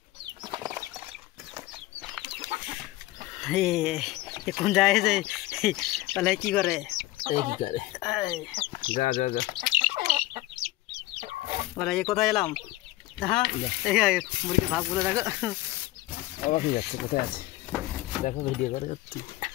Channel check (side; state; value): right; quieter; 17.7 dB